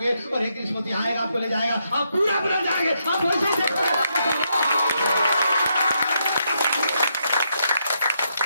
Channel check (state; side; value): inverted; both; correlation -0.79